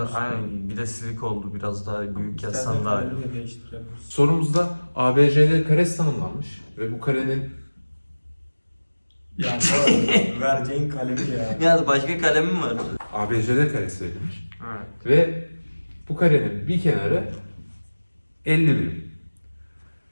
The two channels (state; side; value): inverted; both; correlation -1.00